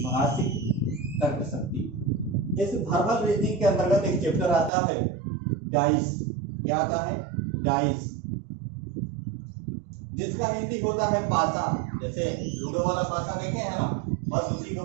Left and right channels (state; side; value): drops out; left; at 4.7 s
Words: शक्ति। इस वर्बल रीजनिंग के अंतर्गत एक चैप्टर आता है डाइस। क्या आता है? डाइस, जिसका हिंदी होता है पासा। जैसे लूडो वाला पासा देखे हैं ना, बस उसी को